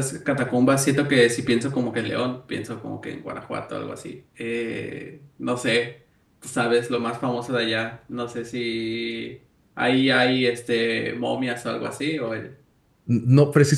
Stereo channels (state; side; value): identical; both; correlation 1.00